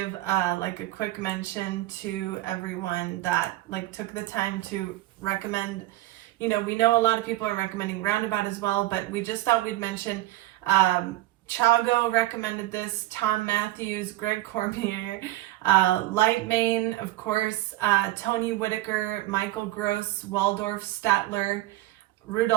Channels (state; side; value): quieter; left; 16.4 dB